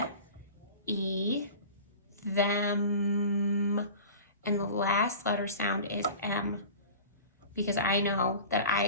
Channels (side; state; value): both; inverted; correlation -0.37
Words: E, them. And the last letter sound is M, because I know that